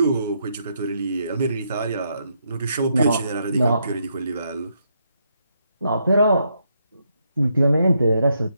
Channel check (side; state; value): both; inverted; correlation -0.78